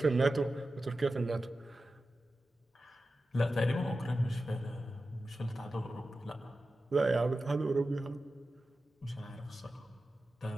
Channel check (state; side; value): normal; both; correlation 0.93